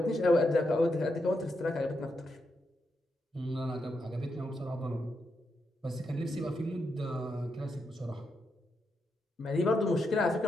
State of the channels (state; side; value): normal; both; correlation 0.83